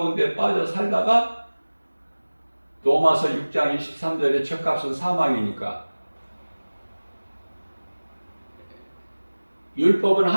빠져 살다가 로마서 6장 23절의 죄값은 사망이니까 율법은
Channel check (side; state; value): both; inverted; correlation -1.00